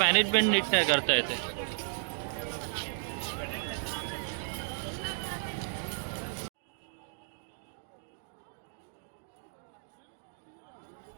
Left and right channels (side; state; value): left; silent; digital silence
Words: नीट नाही करता येते.